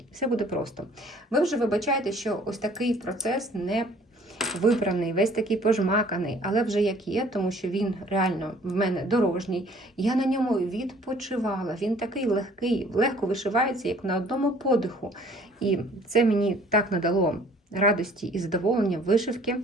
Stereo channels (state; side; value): normal; both; correlation 0.55